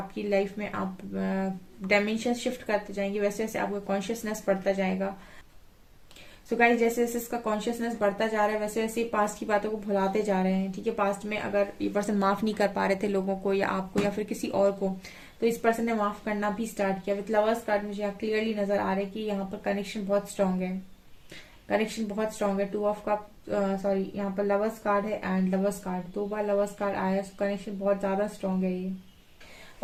लाइफ में आप डायमेंशन शिफ्ट करते जाएंगे, वैसे वैसे आपका कॉन्शियसनेस बढ़ता जाएगा। सो गाइस, जैसे जैसे इसका कॉन्शियसनेस बढ़ता जा रहा है, वैसे वैसे पास्ट की बातों को भुलाते जा रहे हैं। ठीक है, पास्ट में अगर ये पर्सन माफ नहीं कर पा रहे थे लोगों को, या आपको, या फिर किसी और को, तो इस पर्सन ने माफ करना भी स्टार्ट किया। विद लवर्स कार्ड मुझे यहाँ क्लियरली नजर आ रहा है कि यहाँ पर कनेक्शन बहुत स्ट्रांग है। कनेक्शन बहुत स्ट्रांग है। 2 ऑफ कप, सॉरी यहाँ पर लवर्स कार्ड है and lovers card, 2 bar lovers card आया, कनेक्शन बहुत ज्यादा स्ट्रांग है ये।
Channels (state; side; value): identical; both; correlation 1.00